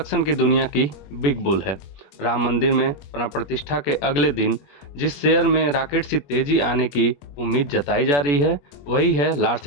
की दुनिया की बिग बुल है। राम मंदिर में प्राण प्रतिष्ठा के अगले दिन जिस शेयर में रॉकेट सी तेजी आने की उम्मीद जताई जा रही है, वही है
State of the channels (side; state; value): right; late; 21 ms